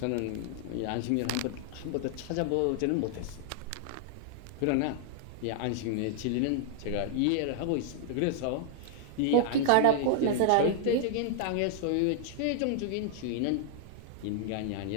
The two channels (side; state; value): both; different; correlation 0.00